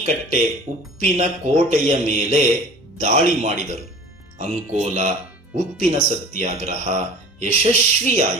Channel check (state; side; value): normal; both; correlation 0.42